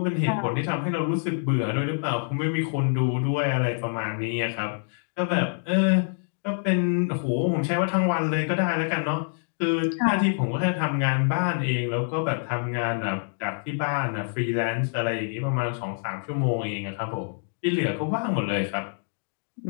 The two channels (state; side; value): silent; right; digital silence